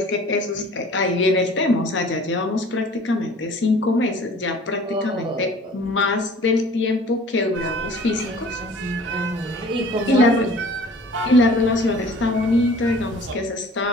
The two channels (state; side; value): normal; both; correlation 0.48